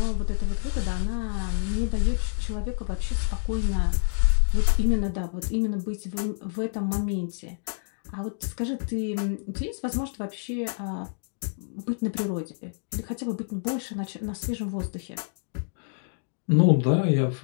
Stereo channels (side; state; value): right; silent; digital silence